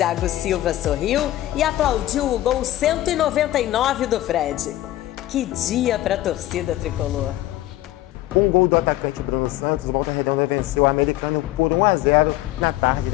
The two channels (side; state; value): right; quieter; 15.1 dB